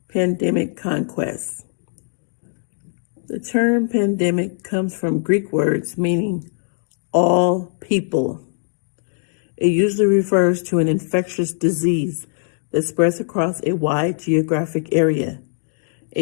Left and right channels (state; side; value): silent; right; 65 dB below the other